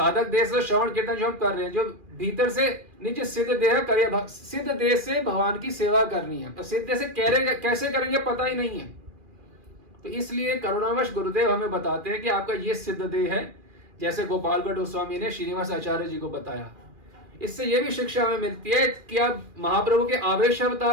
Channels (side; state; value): left; late; 2.4 ms